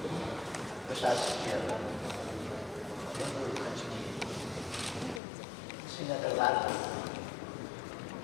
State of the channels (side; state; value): right; drops out; at 5.2 s